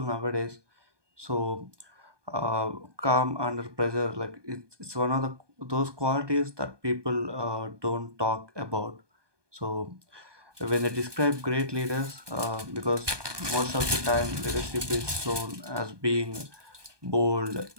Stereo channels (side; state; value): left; late; 1.2 ms